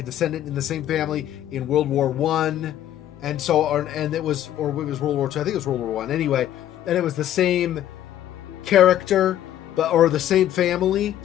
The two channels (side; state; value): right; quieter; 11.9 dB